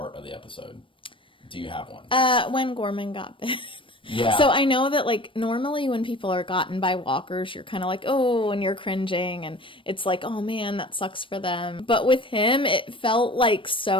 of the episode? Do you have one? When Gorman got bit. Yeah. So I know that like normally when people are gotten by walkers, you're kind of like, oh, and you're cringing, and it's like, oh man, that sucks for them. But with him, it felt like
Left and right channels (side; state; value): right; late; 0.25 ms